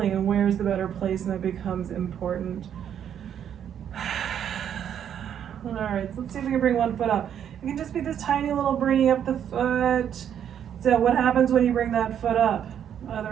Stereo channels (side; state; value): left; quieter; 9.2 dB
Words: and where's the better placement becomes important. All right, so let's see if we can bring one foot up. It can just be this tiny little bringing up the foot. So what happens when you bring that foot up?